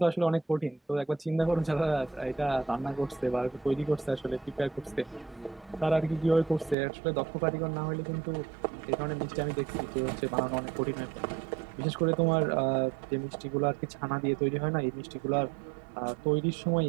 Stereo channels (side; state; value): left; drops out; at 6.8 s